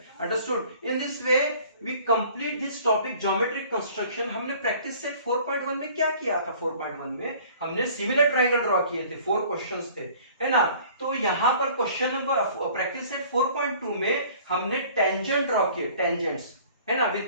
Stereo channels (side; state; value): both; inverted; correlation -0.51